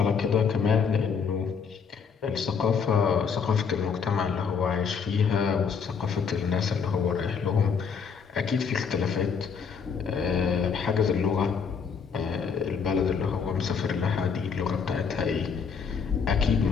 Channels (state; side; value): quieter; right; 6.2 dB